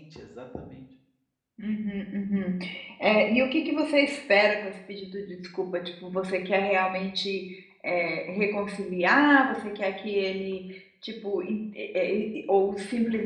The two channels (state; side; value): identical; both; correlation 1.00